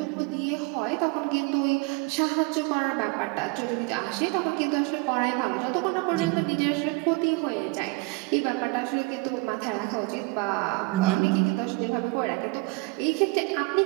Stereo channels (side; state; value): left; quieter; 26.2 dB